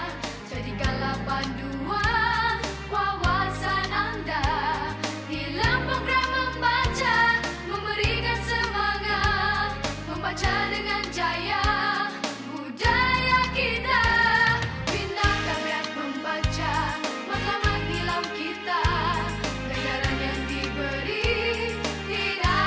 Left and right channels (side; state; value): both; identical; correlation 1.00